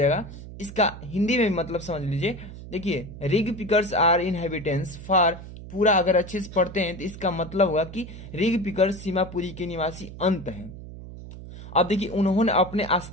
इसका हिंदी में मतलब समझ लीजिए, देखिए rag pickers are inhabitants for, पूरा अगर अच्छे से पढ़ते हैं तो इसका मतलब होगा कि रिग पिकर्स सीमापुरी के निवासी अंत हैं। अब देखिए, उन्होंने अपने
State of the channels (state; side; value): noise; right; hum, 13 dB below the sound